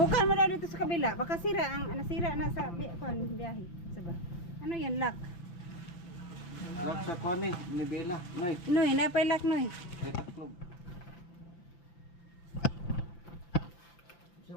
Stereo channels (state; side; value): late; right; 5.9 ms